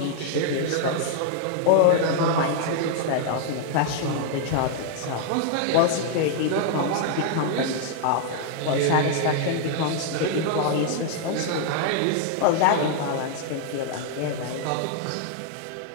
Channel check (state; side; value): different; both; correlation 0.00